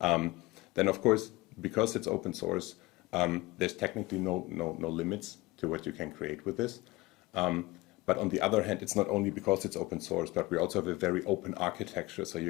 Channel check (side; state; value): right; quieter; 20.8 dB